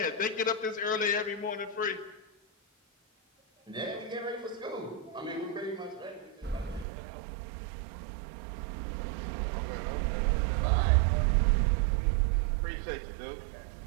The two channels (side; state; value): left; drops out; at 6.9 s